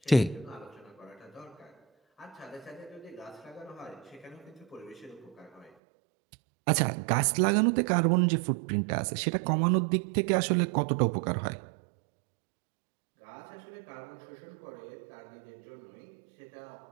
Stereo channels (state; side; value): drops out; left; at 5.7 s